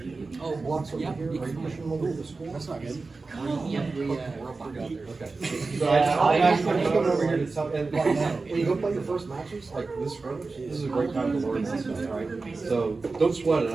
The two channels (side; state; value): left; quieter; 3.9 dB